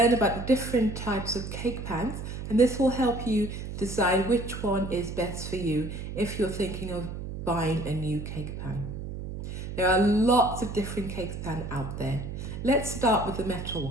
about the different types of cake pans, and this will help you decide which one is best for you if you're thinking of buying a new cake pan. There are lots of different cake pans out there. Let's start with the metal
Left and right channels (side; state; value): right; noise; hum, 7 dB below the sound